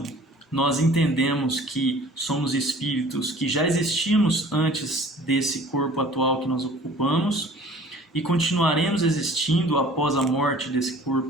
nós entendemos que somos espíritos que já existimos antes desse corpo atual que nós ocupamos e continuaremos existindo após a morte desse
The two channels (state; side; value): normal; both; correlation 0.48